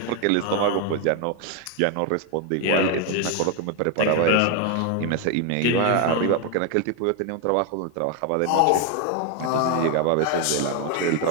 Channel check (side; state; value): both; different; correlation 0.01